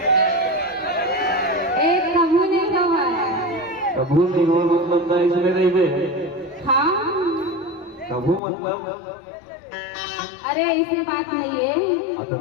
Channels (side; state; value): right; drops out; at 8.4 s